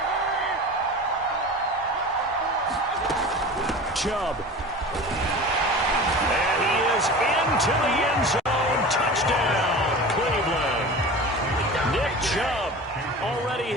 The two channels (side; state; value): both; normal; correlation 0.35